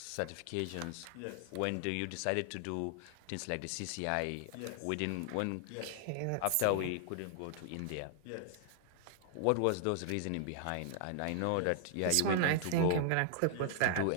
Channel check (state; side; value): different; both; correlation -0.01